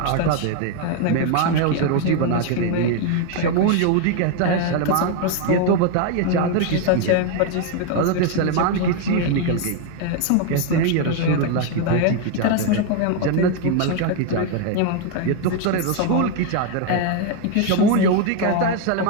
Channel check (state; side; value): different; both; correlation 0.01